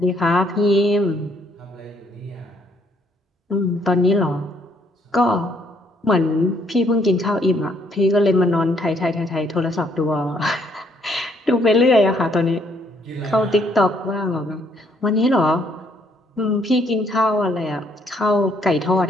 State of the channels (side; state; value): both; normal; correlation 0.68